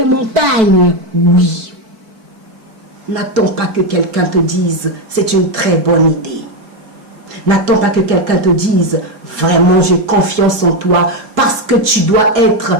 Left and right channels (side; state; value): left; late; 4.5 ms